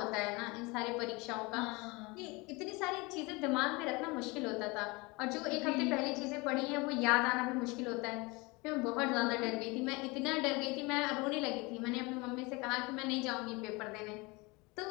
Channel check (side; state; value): right; quieter; 25.6 dB